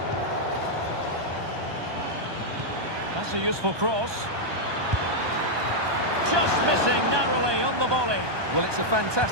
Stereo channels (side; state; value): left; late; 1.2 ms